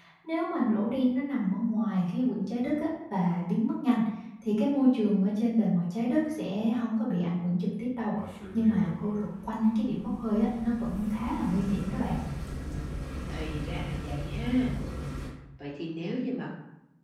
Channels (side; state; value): both; identical; correlation 1.00